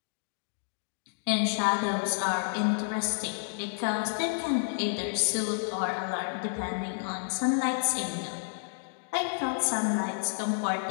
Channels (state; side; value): silent; right; digital silence